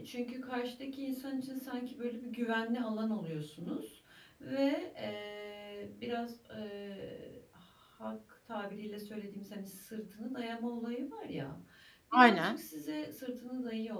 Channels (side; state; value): both; identical; correlation 1.00